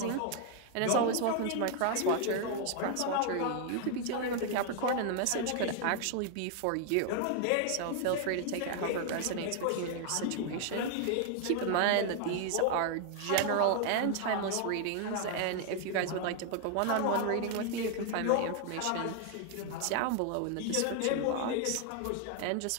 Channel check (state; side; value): different; both; correlation 0.00